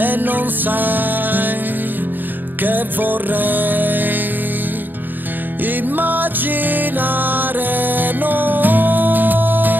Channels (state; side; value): late; left; 0.091 ms